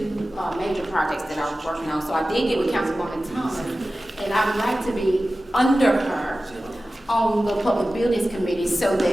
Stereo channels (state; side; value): normal; both; correlation 0.95